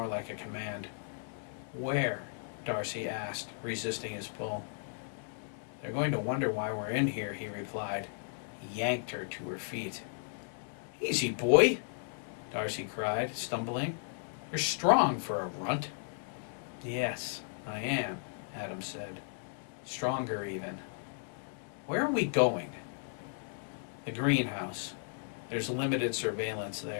like a command. Where? Darcy asked, resisting his pull. They're going to wonder why we're in here, he replied. He yanked her to her feet. Easy, boy, Darcy cried, stumbling. You're strong for a runt. Yes, I am, Adam said. Stronger, even. Where are we going? The greenhouse. There's limited surveillance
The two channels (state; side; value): silent; right; 54 dB below the other